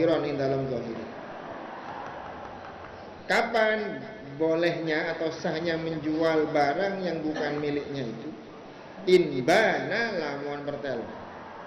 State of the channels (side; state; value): both; identical; correlation 1.00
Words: ing dalam zahir. Kapan bolehnya atau sahnya menjual barang yang bukan miliknya itu? Inbana lamun pertelo.